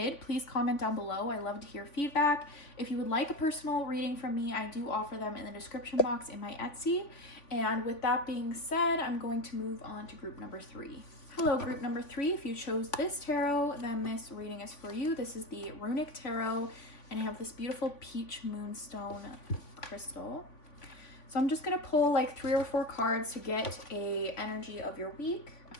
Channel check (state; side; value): late; right; 3.5 ms